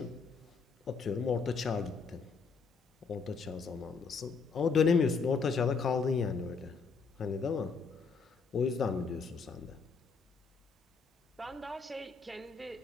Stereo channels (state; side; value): quieter; right; 5.0 dB